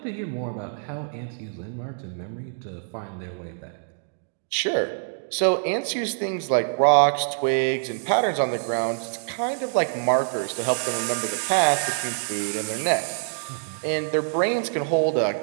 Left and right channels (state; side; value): silent; left; digital silence